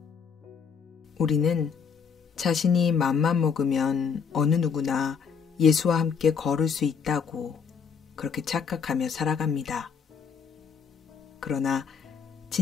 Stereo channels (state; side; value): quieter; right; 6.3 dB